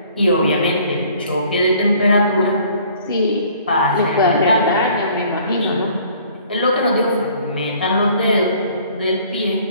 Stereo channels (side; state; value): both; inverted; correlation -0.56